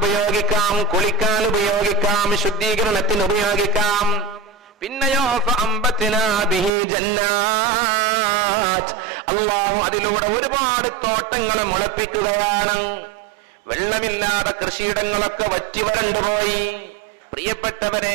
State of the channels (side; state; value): left; drops out; at 6.7 s